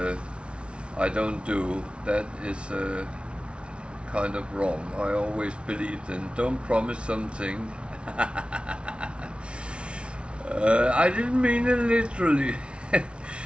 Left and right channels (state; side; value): late; left; 0.059 ms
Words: I don't do, that is kind of wrong. I always believed in don't promise something. I didn't mean it literally.